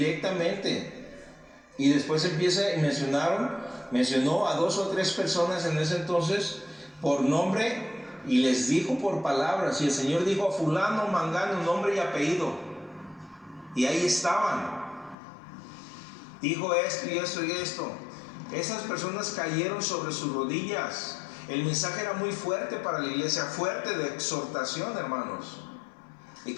Y después mencionó a 2 o 3 personas en ese entonces por nombre y les dijo por palabras. Y el Señor dijo a fulano, mangano, nombre y apellido. Y ahí estaban. Dijo esto y esto y esto. Esas personas cayeron sobre sus rodillas. El mensaje era muy fuerte para la iglesia, fuerte de exhortación, hermanos. Y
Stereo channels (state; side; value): drops out; right; at 15.2 s